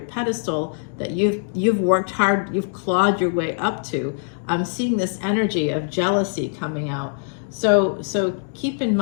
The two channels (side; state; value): right; silent; digital silence